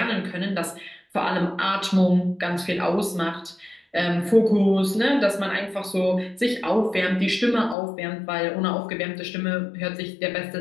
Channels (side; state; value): right; drops out; at 7.8 s